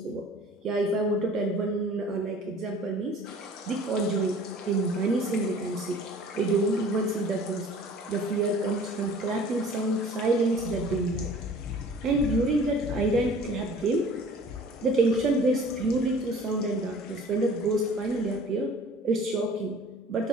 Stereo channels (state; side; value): normal; both; correlation 0.48